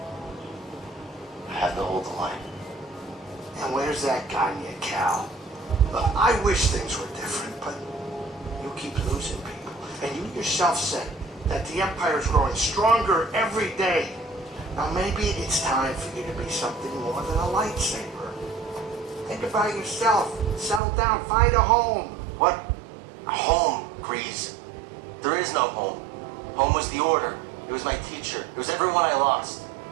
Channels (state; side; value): drops out; left; at 20.8 s